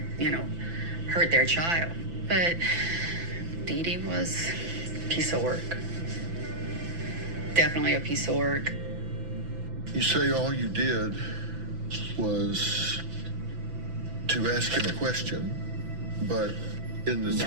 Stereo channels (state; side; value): late; left; 6.0 ms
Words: hurt their child? But Dee Dee was a piece of work. Definitely a piece of work. You say all you did was to ask him a question, but in the